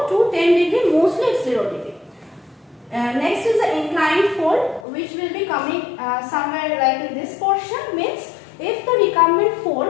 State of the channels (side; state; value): right; drops out; at 4.9 s